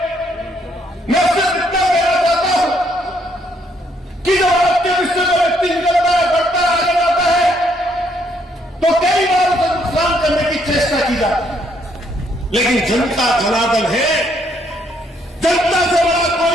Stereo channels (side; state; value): both; normal; correlation 0.70